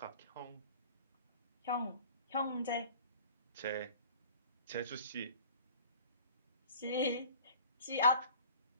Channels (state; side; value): inverted; both; correlation -0.46